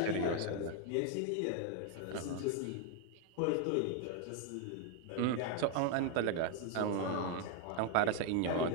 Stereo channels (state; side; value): different; both; correlation 0.01